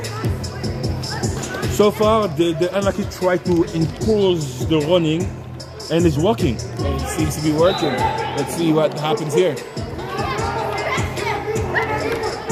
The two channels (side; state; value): both; identical; correlation 1.00